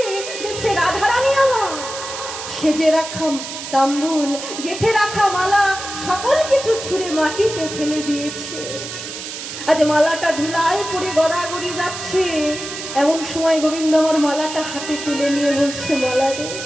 দেখছে রাধারানী আমার সেজে রাখা তাম্বুল, গেথে রাখা মালা সকল কিছু ছুঁড়ে মাটিতে ফেলে দিয়েছে। আজ মালাটা ধুলায় পড়ে গড়াগড়ি যাচ্ছে। এমন সময় গোবিন্দ আমার মালাটা হাতে তুলে নিয়ে বলছে, মালা রে,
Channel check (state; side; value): noise; right; hiss, 9 dB below the sound